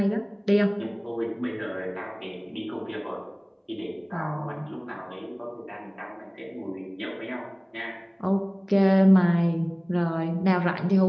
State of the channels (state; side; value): identical; both; correlation 1.00